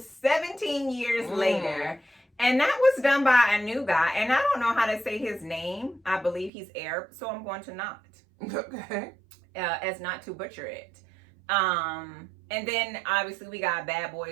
years later. And that was done by a new guy. And I don't know how to say his name. I believe he's Arab. So I'm going to not. Okay. As not to butcher it. And then obviously we got Bad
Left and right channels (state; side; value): drops out; left; at 6.5 s